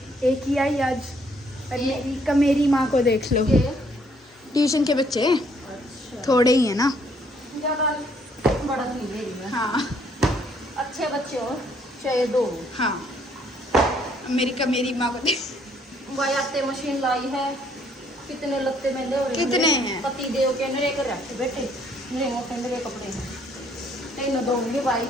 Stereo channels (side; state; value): both; normal; correlation 0.66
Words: एक ही आई आज। और मेरी माँ को देख लो, ट्यूशन के बच्चे थोड़े ही है ना। ज़्यादा बड़ा तो नहीं ले रही मैं। हाँ अच्छे बच्चे हो चाहे 2। हाँ, मेरी माँ को देख। भाई आते मशीन लाई है, कितने लत्ते मेले हो रहे हैं। कितने हैं? पति देव के नरे कर रखे बेटे, नरे मोटे नरे कपड़े हैं। 3 दूंगी भाई।